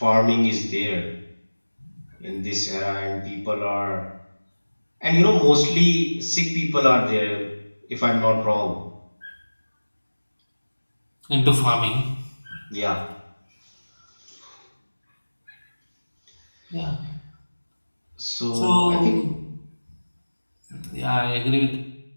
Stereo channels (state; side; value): inverted; both; correlation -1.00